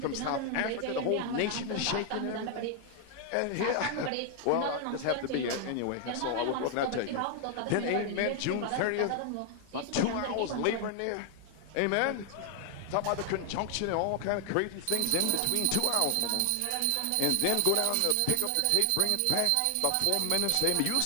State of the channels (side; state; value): both; different; correlation 0.00